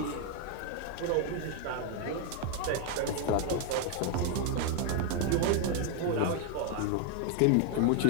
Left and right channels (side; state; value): both; different; correlation 0.01